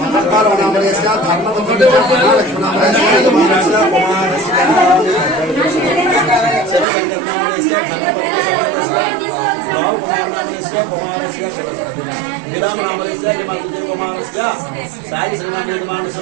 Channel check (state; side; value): drops out; left; at 6.9 s